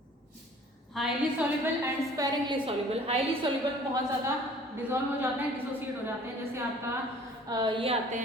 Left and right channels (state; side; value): normal; both; correlation 0.51